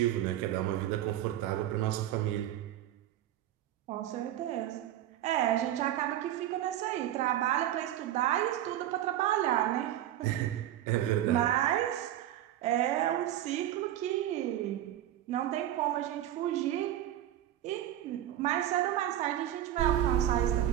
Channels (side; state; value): left; quieter; 12.6 dB